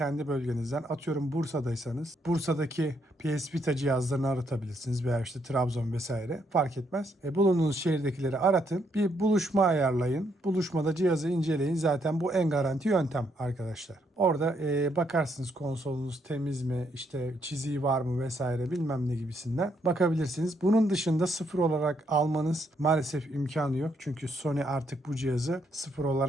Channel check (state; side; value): normal; both; correlation 0.74